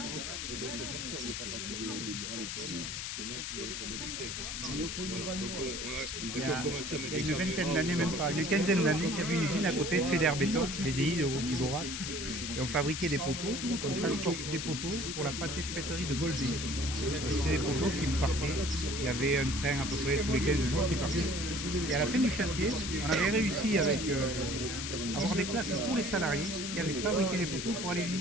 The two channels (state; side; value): noise; left; hiss, 5 dB below the sound